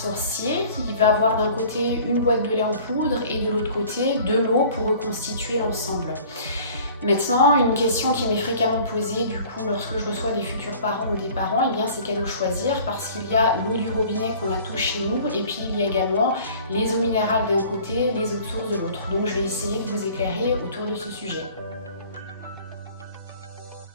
Il va avoir d'un côté une boîte de lait en poudre et de l'autre côté de l'eau pour reconstituer l'ensemble. Maintenant, une question qui m'est fréquemment posée du coup lorsque je reçois des futurs parents ou des parents, c'est quelle eau choisir, parce qu'il y a l'eau du robinet qu'on a tous chez nous et puis il y a également les eaux minérales d'un côté, les eaux de source de l'autre. Donc je vais essayer de vous éclairer autour de ce sujet.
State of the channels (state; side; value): inverted; both; correlation -0.48